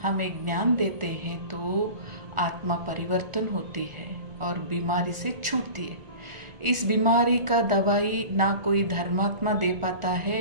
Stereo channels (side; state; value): left; late; 1.4 ms